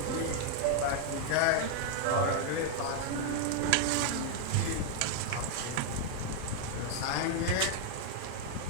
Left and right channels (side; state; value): both; different; correlation 0.00